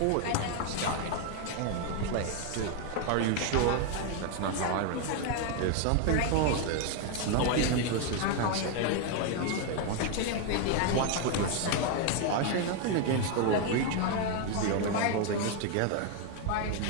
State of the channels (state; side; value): different; both; correlation 0.01